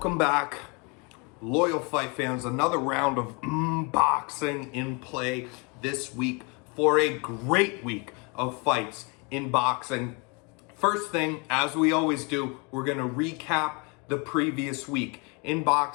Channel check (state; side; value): quieter; right; 31.3 dB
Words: back, loyal fight fans. Another round of boxing in play this week for a great week of fights in boxing. First thing, as we always do, we're going to recap the previous week in